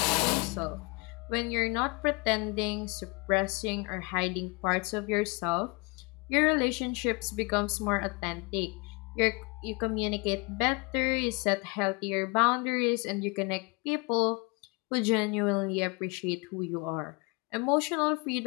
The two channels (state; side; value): quieter; right; 29.3 dB